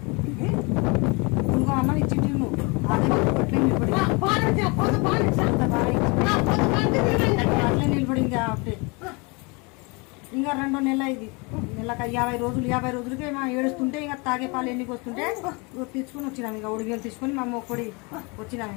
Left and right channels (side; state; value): right; quieter; 29.4 dB